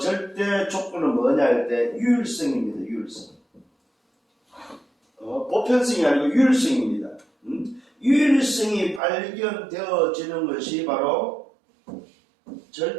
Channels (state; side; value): drops out; left; at 9.0 s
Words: 조건은 뭐냐 할 때 유일성입니다. 유일성. 보편성이 아니고 유일성입니다. 유일성이 발견되어지는 것이 바로